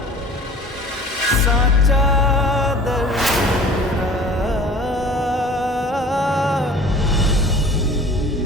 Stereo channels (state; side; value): normal; both; correlation 0.45